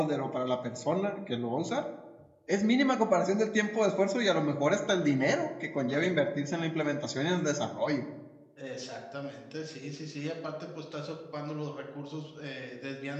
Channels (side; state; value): both; identical; correlation 1.00